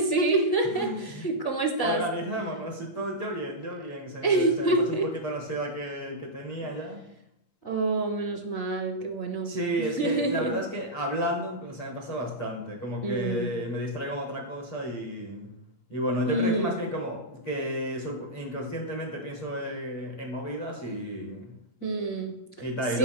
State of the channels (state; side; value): late; right; 8.5 ms